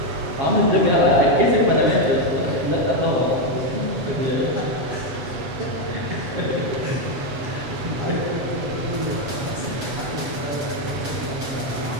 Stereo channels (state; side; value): late; left; 7.6 ms